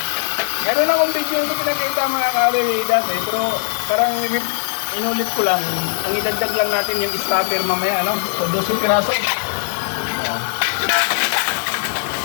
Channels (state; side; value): silent; right; digital silence